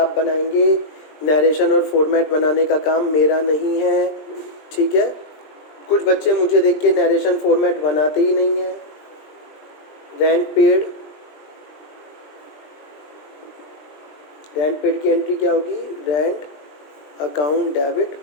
बनाएंगे। नरेशन और फॉर्मेट बनाने का काम मेरा नहीं है, ठीक है। कुछ बच्चे मुझे देख के नरेशन फॉर्मेट बनाते ही नहीं हैं। रेंट पेड, रेंट पेड की एंट्री क्या होगी? Rent account debit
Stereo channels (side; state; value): right; late; 20 ms